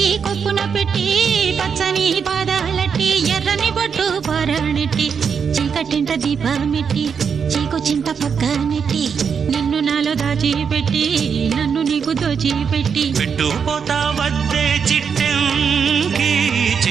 కొప్పున పెట్టి పచ్చని పాదాలట్టి ఎర్రని బొట్టు పారాణెట్టి చీకటింట దీపమెట్టి చీకు చింత పక్క నెట్టి నిన్ను నాలో దాచిపెట్టి నన్ను నీకు దోచిపెట్టి పెట్టుపోతా వద్దే చిట్టంకి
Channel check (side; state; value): left; quieter; 6.6 dB